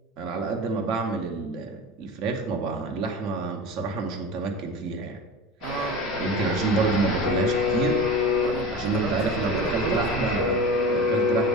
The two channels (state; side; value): normal; both; correlation 0.32